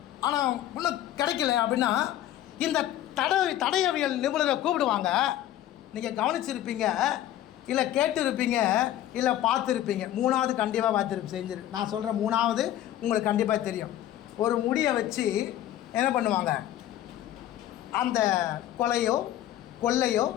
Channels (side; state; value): right; quieter; 12.7 dB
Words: ஆனால் இன்னும் கிடைக்கல அப்படின்னா இந்த தடயவியல் நிபுணரை கூப்பிடுவாங்க. நீங்கள் கவனிச்சிருப்பீங்க, இல்லை கேட்டிருப்பீங்க, இல்லை பார்த்துருப்பீங்க. 3வது கண்டிப்பாக நான் சொல்கிற 3வது உங்களுக்கு கண்டிப்பாக தெரியும். ஒரு முடியை வச்சு என்ன பண்ணுவாங்க? அந்த கொலையோ கொள்ளையோ